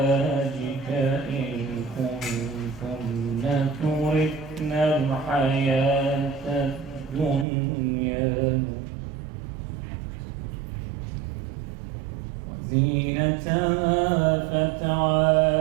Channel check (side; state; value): left; drops out; at 7.5 s